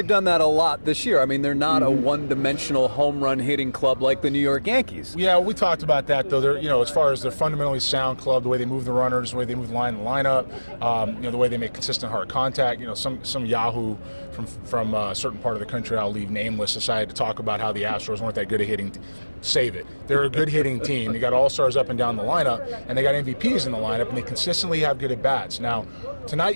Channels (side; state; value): both; inverted; correlation -1.00